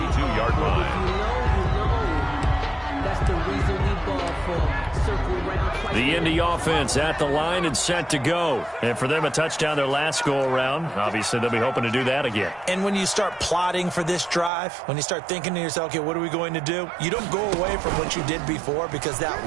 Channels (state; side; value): drops out; left; at 14.5 s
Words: line. That's the reason we ball for. Circle round twice. The Indy offense at the line and set to go. And for them, a touchdown their last go-around. Obviously, they'll be hoping to do that again. And when you start plotting for this drive, when you start thinking to yourself, okay, what are we going to do? You don't go away from what you did before because that